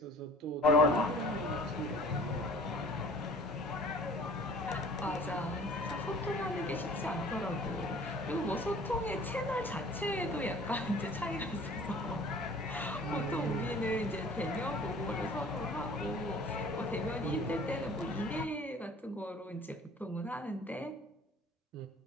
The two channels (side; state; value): both; normal; correlation 0.48